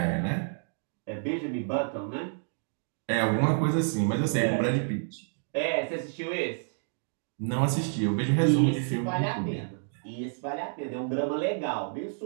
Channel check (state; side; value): silent; left; digital silence